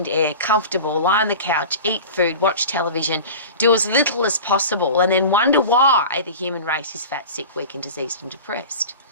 air, comfortable, lie on the couch, eat food, watch television, do as little as possible, and then wonder why the human race is fat, sick, weak and diseased and depressed.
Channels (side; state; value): both; inverted; correlation -0.35